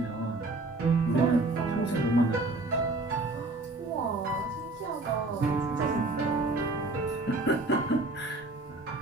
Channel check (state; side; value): quieter; left; 3.0 dB